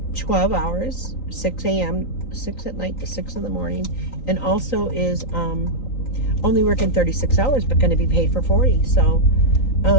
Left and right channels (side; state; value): right; late; 3.9 ms